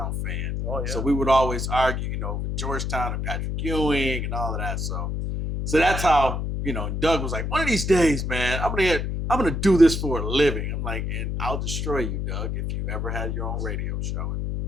fan. Oh, yeah. So we would always argue, with Georgetown and Patrick Ewing and all of that. So that's how, and Doug was like, one of these days, man, I'm gonna do this for a living. I'm like, and I'll destroy you, Doug, if you ever had your own radio show. And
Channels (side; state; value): left; noise; hum, 2 dB below the sound